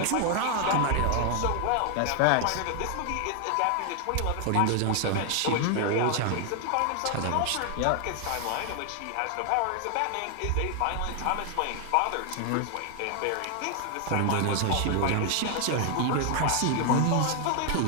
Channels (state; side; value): different; both; correlation 0.00